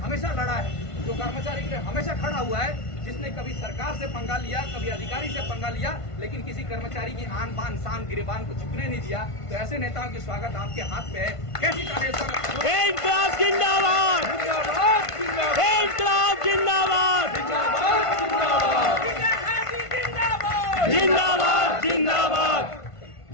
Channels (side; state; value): right; late; 1.5 ms